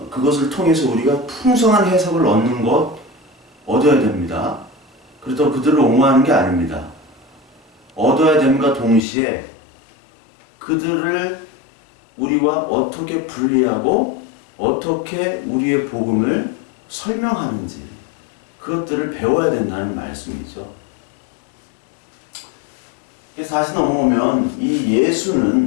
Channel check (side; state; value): right; drops out; at 9.0 s